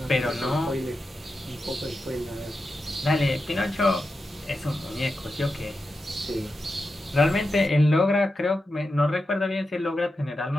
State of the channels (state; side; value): normal; both; correlation 0.90